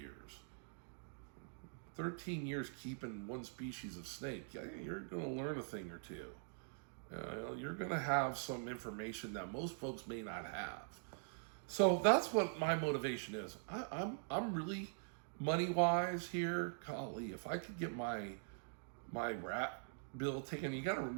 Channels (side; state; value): left; silent; digital silence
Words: 13 years keeping one species of snake, you're going to learn a thing or two. You're going to have some information that most folks may not have. So that's what my motivation is. I'm really money-wise here. Golly, if I could get my rat bill taken, you got to